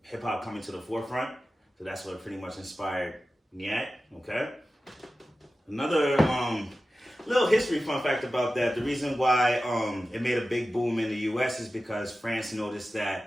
hip hop coming to the forefront. So that's what pretty much inspired Nyack. Okay. Another little history fun fact about that. The reason why it made a big boom in the U.S. is because France noticed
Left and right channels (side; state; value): both; normal; correlation 0.94